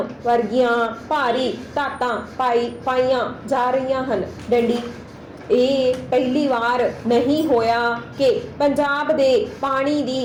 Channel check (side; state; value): both; identical; correlation 1.00